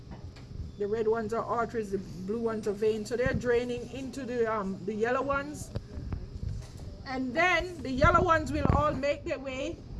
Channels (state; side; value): identical; both; correlation 1.00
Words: The red ones are arteries, the blue ones are veins. So they're draining into the yellow ones. And then the yellow ones will all make their way